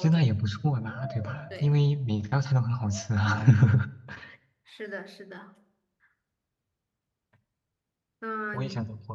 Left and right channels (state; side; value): identical; both; correlation 1.00